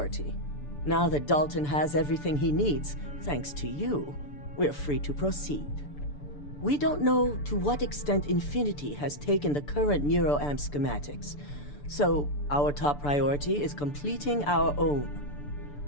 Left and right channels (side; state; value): right; late; 6.9 ms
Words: Now that Dalton has everything he needs, thanks to you, we're free to proceed. We don't know to what extent Infinity has taken the current neuroamp schematics, so our top priority is completing our own.